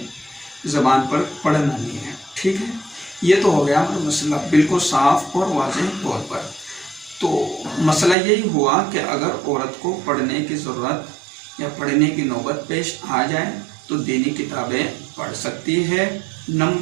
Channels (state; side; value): drops out; left; at 8.2 s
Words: ज़बान पर पढ़ना नहीं है। ठीक है, ये तो हो गया हमारा मसला बिल्कुल साफ और वाज़ेह तौर पर। तो मसला यही हुआ कि अगर औरत को पढ़ने की ज़रूरत या पढ़ने की नौबत पेश आ जाए तो दीनी किताबें पढ़ सकती है।